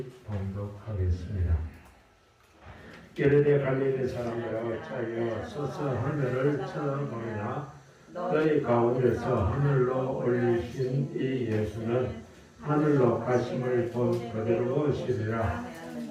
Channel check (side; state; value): both; identical; correlation 1.00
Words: 봉독하겠습니다. 게르네 갈릴리 사람들아 어찌하여 서서 하늘을 쳐다보느냐. 너희 가운데서 하늘로 올리신 이 예수는 하늘로 가심을 본 그대로 오시리라.